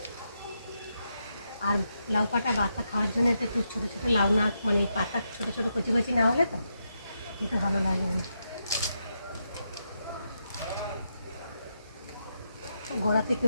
আর লাউ পাতা বাতা খাওয়ার জন্য এটা একটু ছোটো ছোটো লাউ না, মানে পাতা ছোটো ছোটো কচি কচি না হলে তো খেতে ভালো লাগে না। গোড়া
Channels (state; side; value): inverted; both; correlation -0.83